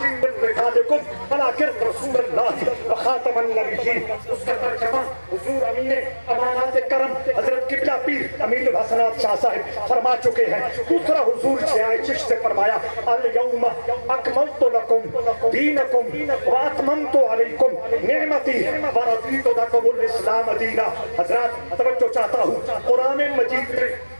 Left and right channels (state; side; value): inverted; both; correlation -1.00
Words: من رجالکم ولکن رسول اللہ وخاتم النبیین۔ اس کا ترجمہ حضور امین امانات کرم حضرت قبلہ پیر امین الحسنات شاہ صاحب فرما چکے ہیں۔ دوسرا حضور ضیاء چشت نے فرمایا، الیوم اکملت لکم دینکم واتممت علیکم نعمتی ورضیت لکم الاسلام دینا۔ حضرات توجہ چاہتا ہوں، قرآن مجید میں